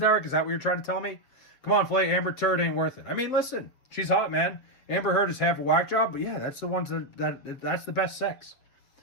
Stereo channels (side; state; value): right; late; 7.7 ms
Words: Is that what you're trying to tell me? Come on, Flay, Amber Turd ain't worth it. I mean, listen, she's hot, man. Amber Heard is half a whack job, but yeah, that's the ones that's the best sex.